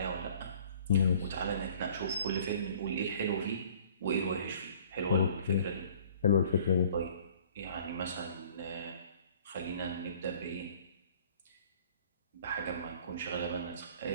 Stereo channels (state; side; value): inverted; both; correlation -0.52